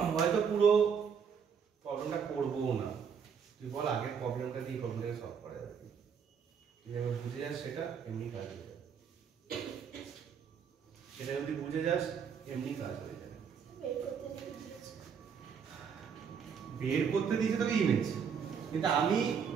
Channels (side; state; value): left; quieter; 6.9 dB